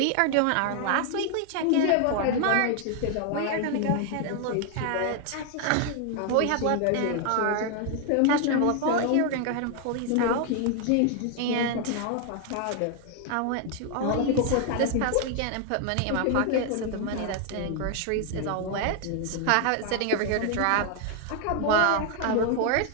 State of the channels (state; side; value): different; both; correlation 0.00